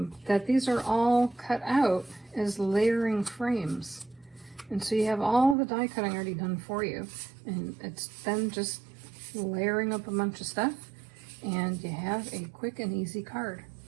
that these are all cut out as layering frames. And so you have all the die cutting already done for you, and it's then just layering up a bunch of stuff, and you have a quick and easy card.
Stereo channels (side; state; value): left; drops out; at 5.6 s